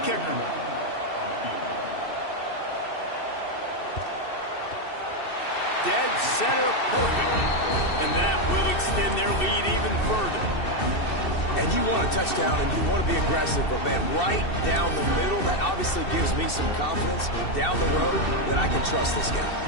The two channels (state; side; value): late; right; 2.7 ms